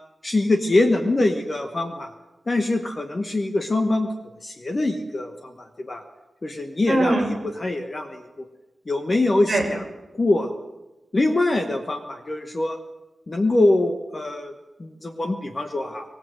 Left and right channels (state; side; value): normal; both; correlation 0.95